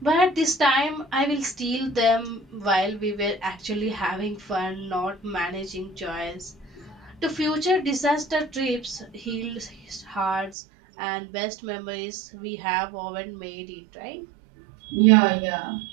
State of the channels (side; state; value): left; drops out; at 10.6 s